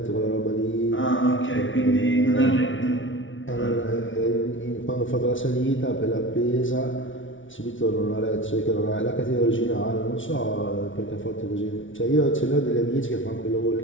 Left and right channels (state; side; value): late; right; 0.56 ms